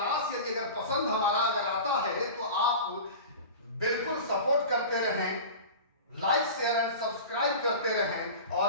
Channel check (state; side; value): inverted; both; correlation -0.33